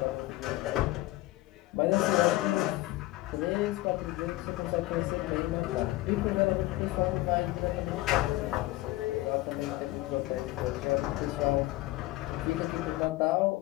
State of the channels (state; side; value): quieter; right; 18.0 dB